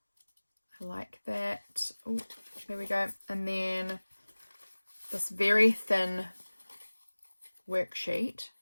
I like that. Oh, there we go. And then this very thin worksheet.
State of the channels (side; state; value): both; inverted; correlation -1.00